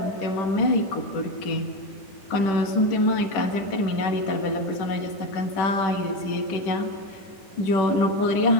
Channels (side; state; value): right; late; 10 ms